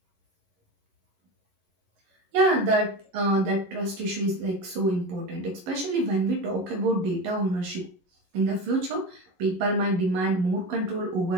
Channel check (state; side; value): late; left; 11 ms